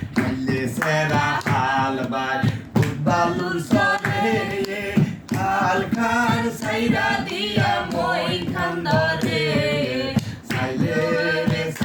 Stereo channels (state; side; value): identical; both; correlation 1.00